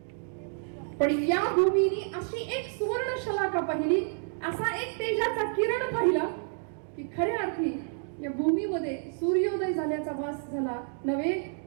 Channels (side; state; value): left; silent; 56 dB below the other